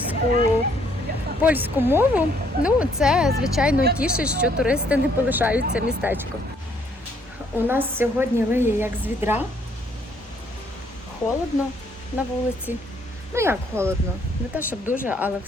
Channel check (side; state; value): both; normal; correlation 0.66